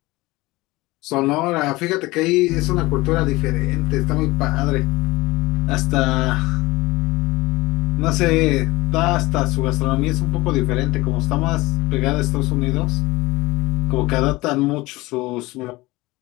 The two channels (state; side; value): quieter; right; 20.6 dB